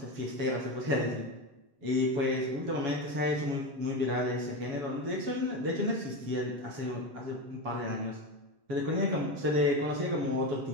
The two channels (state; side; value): late; left; 7.1 ms